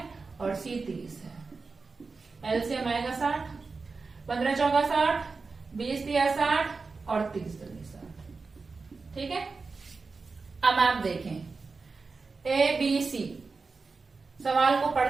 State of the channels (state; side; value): quieter; left; 4.3 dB